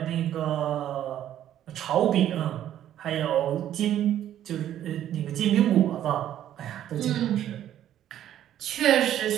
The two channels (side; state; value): left; quieter; 11.4 dB